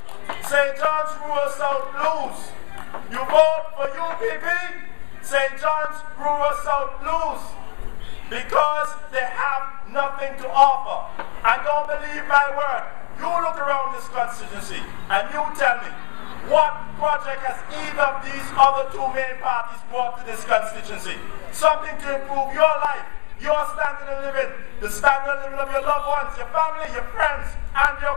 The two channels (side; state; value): right; quieter; 30.4 dB